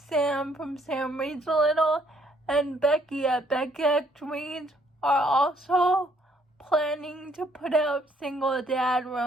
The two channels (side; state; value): both; normal; correlation 0.67